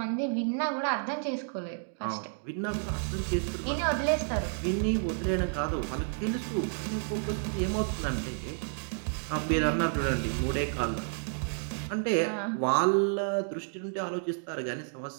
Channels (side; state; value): left; silent; 57 dB below the other